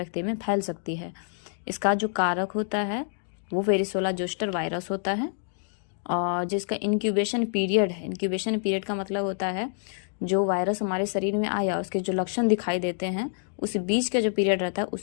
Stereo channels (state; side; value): silent; right; digital silence